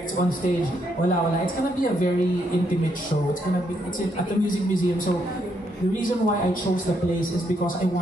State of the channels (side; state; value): both; normal; correlation 0.75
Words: on stage, wala. It's gonna be a very intimate show. It's at the Music Museum. So the reason why I chose the place is because I